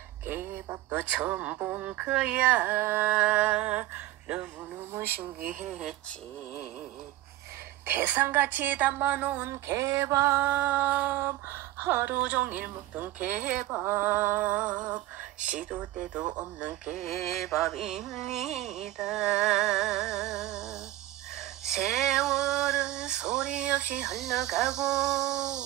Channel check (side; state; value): left; quieter; 15.5 dB